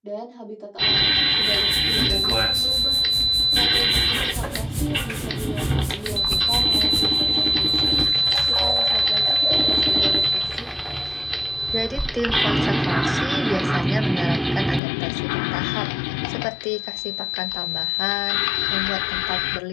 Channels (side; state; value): right; drops out; at 14.8 s